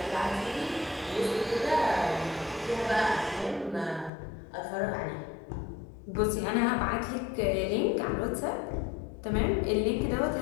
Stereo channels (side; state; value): right; drops out; at 4.1 s